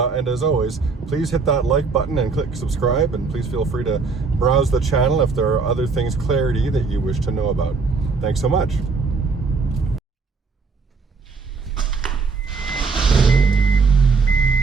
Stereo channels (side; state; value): left; quieter; 4.7 dB